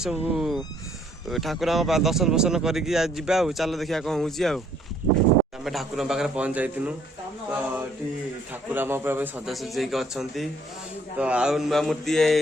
सब ठाकुर दर्शन फर्शन करके जावा। चल देखिए कौन हो आम ठाकुर पाखे पहुँच जाइनु। तो ये ठाकुर आम सजासजी अच्छा। तो आउ नुआ मूर्ति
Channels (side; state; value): both; normal; correlation 0.64